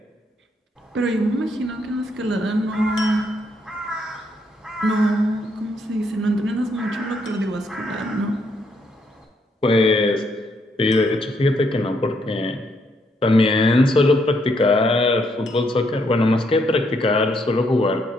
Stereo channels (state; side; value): normal; both; correlation 0.74